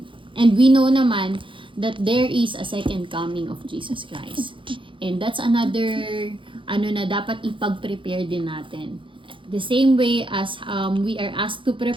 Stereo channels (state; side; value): late; left; 0.25 ms